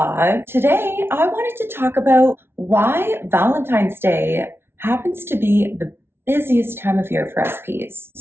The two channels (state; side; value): late; left; 0.12 ms